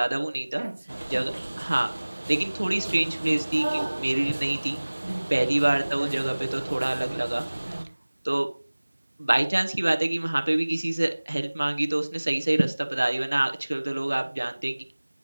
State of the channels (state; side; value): inverted; both; correlation -1.00